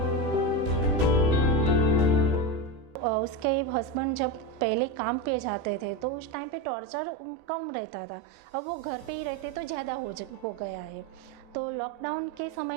उसके हस्बैंड जब पहले काम पे जाते थे तो उस टाइम पे टॉर्चर कम रहता था, अब वो घर पे ही रहते तो ज़्यादा हो गया है। तो लॉकडाउन के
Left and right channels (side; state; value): left; late; 15 ms